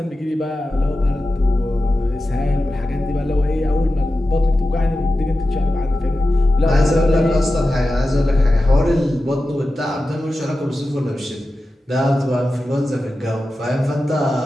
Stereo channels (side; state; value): both; normal; correlation 0.93